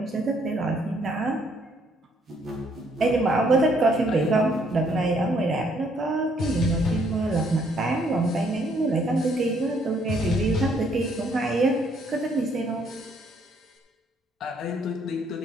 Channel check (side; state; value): both; normal; correlation 0.68